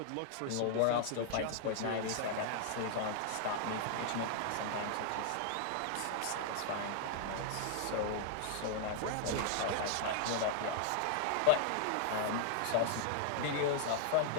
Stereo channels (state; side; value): different; both; correlation -0.01